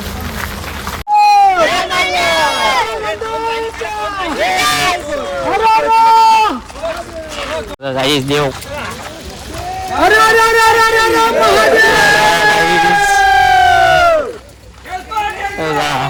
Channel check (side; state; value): both; identical; correlation 1.00